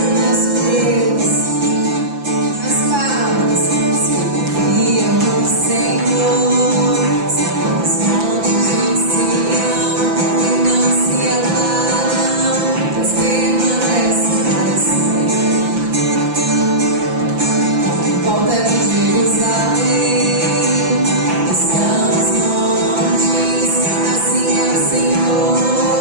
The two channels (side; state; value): left; late; 5.9 ms